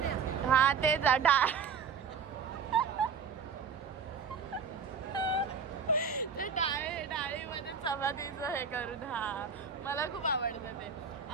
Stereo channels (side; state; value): left; quieter; 5.9 dB